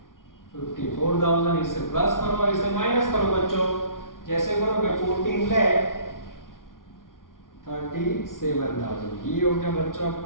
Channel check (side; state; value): right; late; 0.90 ms